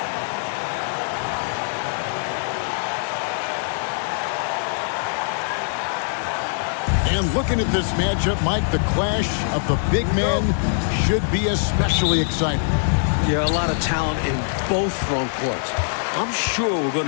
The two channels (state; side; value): silent; right; digital silence